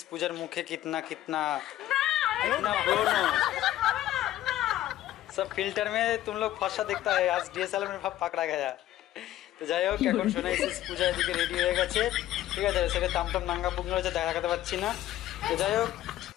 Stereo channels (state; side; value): quieter; right; 13.7 dB